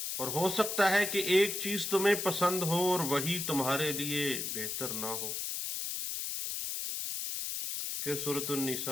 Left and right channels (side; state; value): left; noise; hiss, 3 dB below the sound